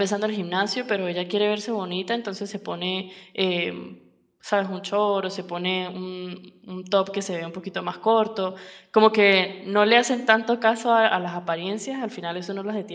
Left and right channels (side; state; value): both; identical; correlation 1.00